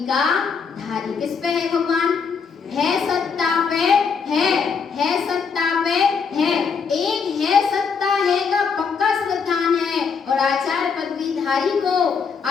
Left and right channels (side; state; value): right; quieter; 5.8 dB